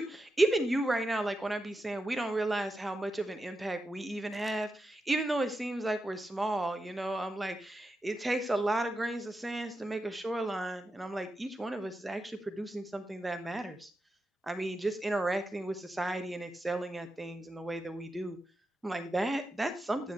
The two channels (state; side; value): normal; both; correlation 0.88